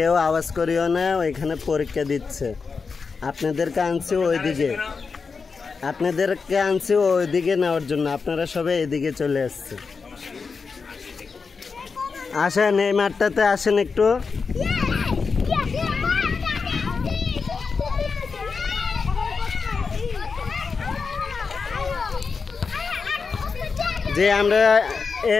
আওয়াজ করিও না, ওইখানে পরীক্ষা দিচ্ছে। আপনাদেরকে আনছি ওইদিকে নেওয়ার জন্য, আপনারা সবাই এদিকে চলে আসছে। আসেন এই মাঠটাতে আসেন একটু। যে আমরা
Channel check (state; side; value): quieter; right; 5.0 dB